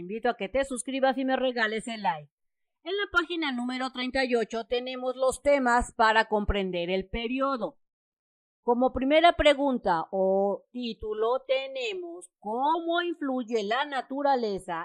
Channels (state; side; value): identical; both; correlation 1.00